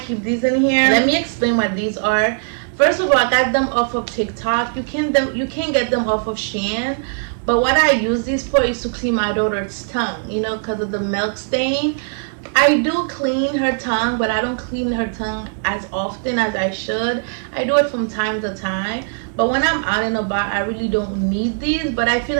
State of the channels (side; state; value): left; silent; 62 dB below the other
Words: keep these in here. Let me explain what these are. First of all, I got them off of TikTok. You can get them off of Shein. But what I use these for is to clean my daughter's tongue, you know, because of the milk stain. I do clean her tongue, but I don't clean her tongue as often as I should. I do it from time to time. But when I'm out and about, I really don't need these. But I feel